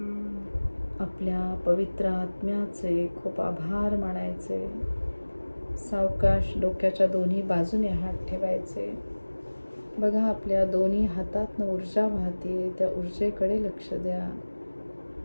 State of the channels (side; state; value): both; inverted; correlation -1.00